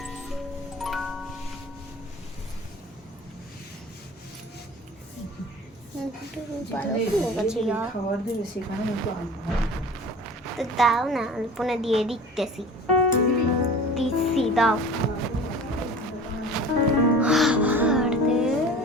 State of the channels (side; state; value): both; normal; correlation 0.40